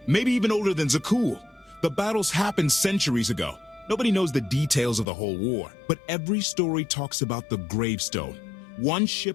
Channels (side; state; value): right; drops out; at 5.1 s